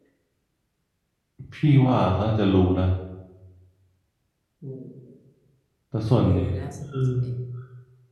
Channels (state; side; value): identical; both; correlation 1.00